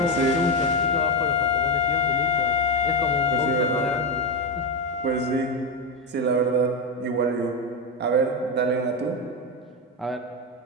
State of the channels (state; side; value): normal; both; correlation 0.09